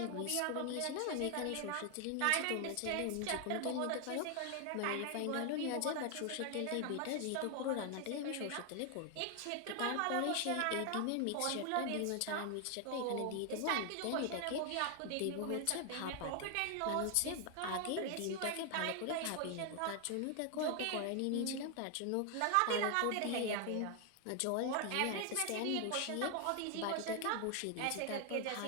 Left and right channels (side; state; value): both; different; correlation 0.00